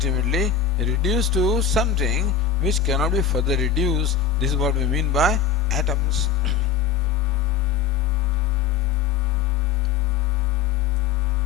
reduce to something which cannot be further reduced. This is what we mean by atoms.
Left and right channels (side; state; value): right; quieter; 7.4 dB